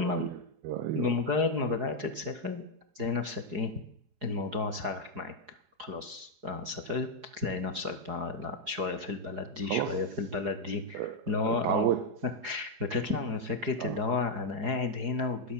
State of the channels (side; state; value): left; late; 4.8 ms